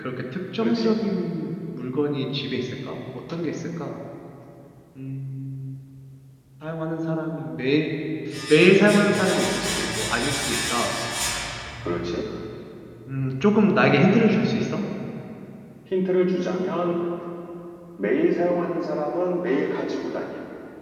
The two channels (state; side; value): identical; both; correlation 1.00